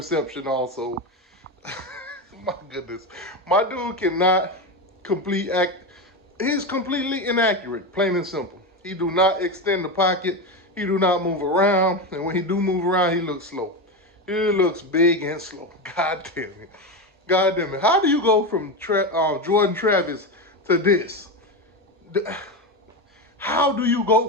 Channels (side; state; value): both; normal; correlation 0.16